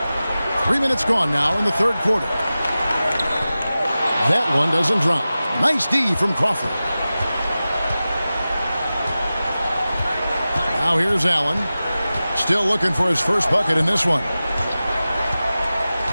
Three minutes gone now in the 3rd quarter. That one doesn't drop. Nice D from Crawford. Now here's Allen. Still looking for his first bucket in this one.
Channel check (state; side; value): inverted; both; correlation -0.95